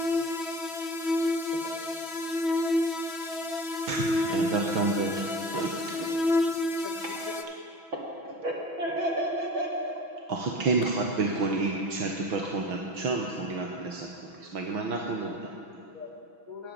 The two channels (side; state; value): left; late; 6.1 ms